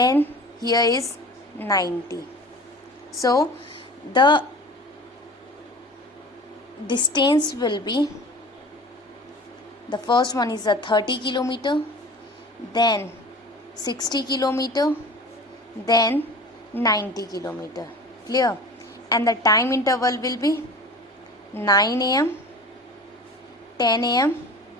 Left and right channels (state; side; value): normal; both; correlation 0.38